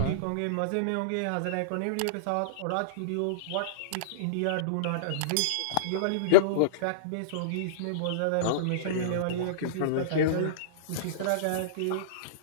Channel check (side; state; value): both; different; correlation -0.03